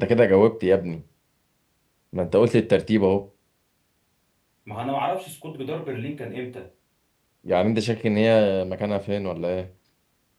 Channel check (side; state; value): both; identical; correlation 1.00